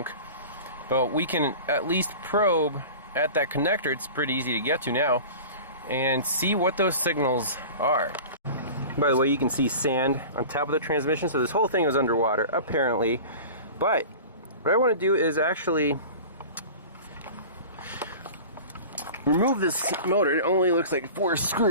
but we can at least probe at that connector. It's pretty easy to get to now, and see what those signals are. By the way, you can see sand on top of the transmission, so this whole thing is underwater, apparently. But what I want to do is actually remove this motor. It only looks like 4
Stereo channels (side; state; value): both; inverted; correlation -0.36